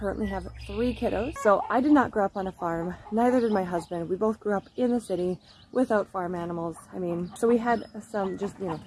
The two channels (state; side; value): identical; both; correlation 1.00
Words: have 3 kiddos. So I did not grow up on a farm, neither did my husband. We both grew up in the city without farm animals. I mean, so we had some just, you know,